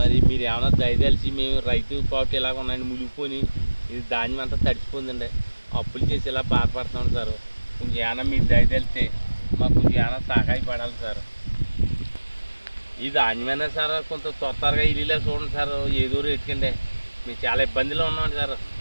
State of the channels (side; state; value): both; inverted; correlation -1.00